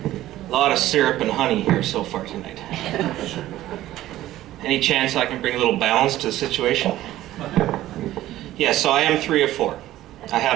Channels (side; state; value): left; quieter; 14.6 dB